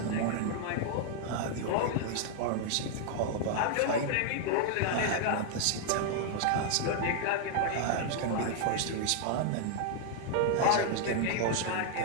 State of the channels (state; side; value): different; both; correlation 0.00